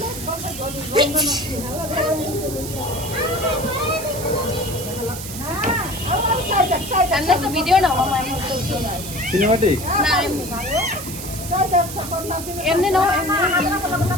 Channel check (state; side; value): noise; right; hiss, 9 dB below the sound